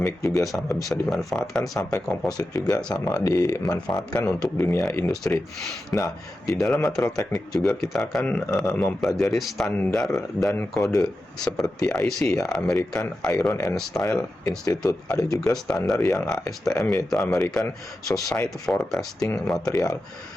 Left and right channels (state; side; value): normal; both; correlation 0.91